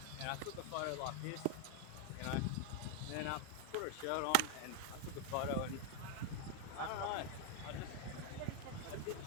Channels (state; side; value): different; both; correlation 0.01